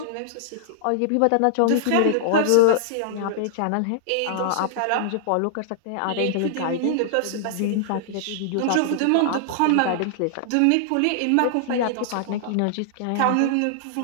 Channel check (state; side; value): different; both; correlation -0.01